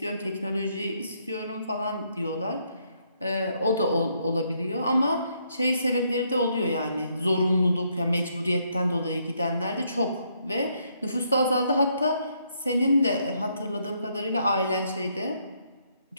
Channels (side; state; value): both; inverted; correlation -0.73